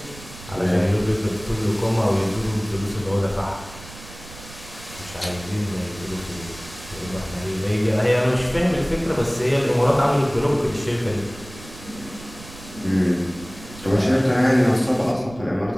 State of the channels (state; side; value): noise; right; rumble, 17 dB below the sound